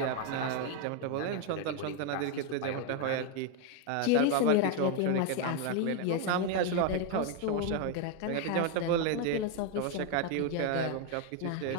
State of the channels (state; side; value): different; both; correlation 0.01